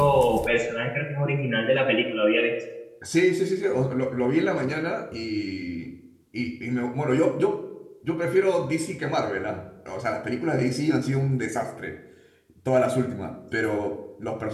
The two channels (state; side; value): identical; both; correlation 1.00